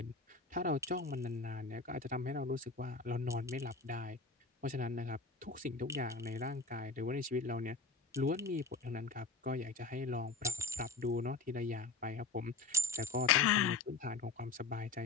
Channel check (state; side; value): quieter; right; 3.9 dB